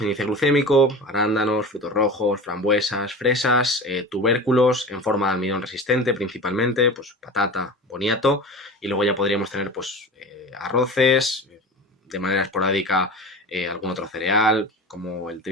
índice glucémico, arándanos, frutos rojos, frambuesas, fresas, tubérculos en forma de almidón resistente principalmente, pues patata, boniato, y luego ya podríamos tener pues arroces, de manera esporádica algún otro cereal, como el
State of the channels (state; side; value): normal; both; correlation 0.32